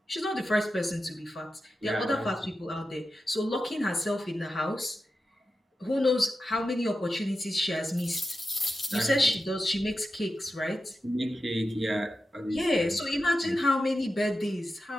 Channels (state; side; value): normal; both; correlation 0.90